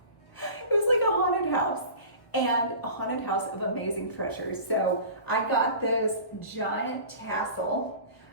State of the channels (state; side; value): late; right; 1.2 ms